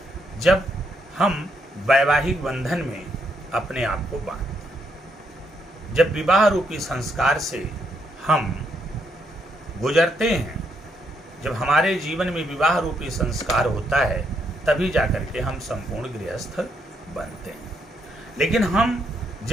जब हम वैवाहिक बंधन में अपने आप को बांधते हैं। जब विवाह रूपी संस्कार से हम गुजरते हैं, जब हमारे जीवन में विवाह रूपी संस्कार होता है, तभी जाकर के हम संपूर्ण गृहस्थ बनते हैं। लेकिन हम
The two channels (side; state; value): both; normal; correlation 0.76